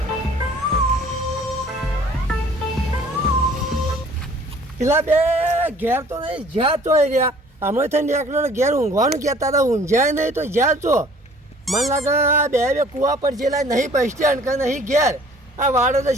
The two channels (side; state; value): both; normal; correlation 0.53